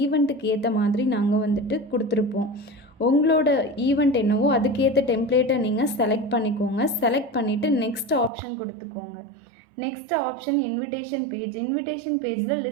ஈவெண்ட்டுக்கு ஏற்ற மாதிரி நாங்கள் வந்துட்டு கொடுத்துருப்போம். உங்களோட ஈவெண்ட் என்னவோ அதுக்கேற்ற டெம்ப்ளேட்டை நீங்கள் செலக்ட் பண்ணிக்கோங்க. செலக்ட் பண்ணிவிட்டு நெக்ஸ்ட் ஆப்ஷன் கொடுத்துக்கோங்க. நெக்ஸ்ட் ஆப்ஷன் இன்விடேஷன் பேஜில்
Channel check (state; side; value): drops out; left; at 8.3 s